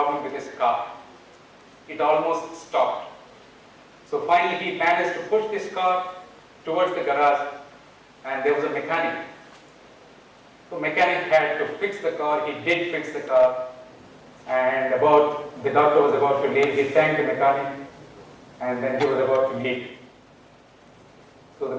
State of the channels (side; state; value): both; identical; correlation 1.00